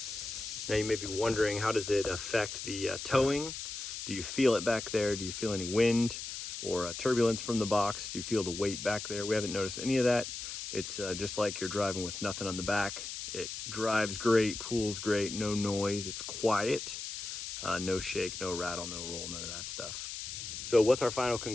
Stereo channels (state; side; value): noise; left; hiss, 7 dB below the sound